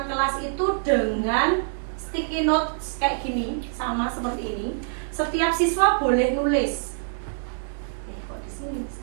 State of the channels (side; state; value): left; silent; 58 dB below the other